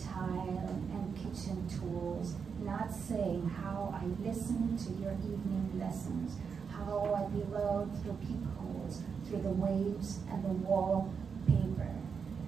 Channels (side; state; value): left; quieter; 6.1 dB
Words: and kitchen tools, not saying how I listened to your evening lessons, how I bellowed through peepholes, through the waves and the wallpaper,